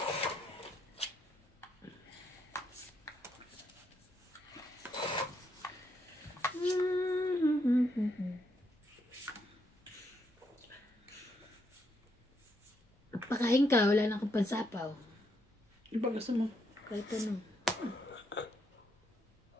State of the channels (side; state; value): both; normal; correlation 0.77